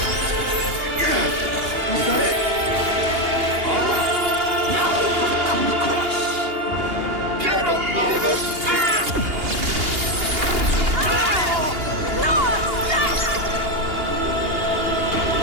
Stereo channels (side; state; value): left; late; 2.8 ms